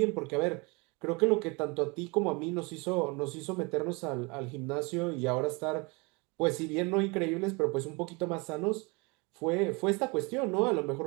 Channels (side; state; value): left; quieter; 28.3 dB